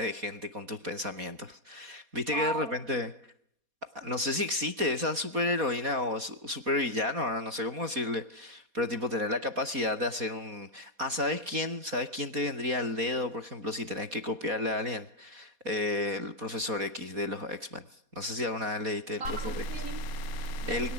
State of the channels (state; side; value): late; left; 4.2 ms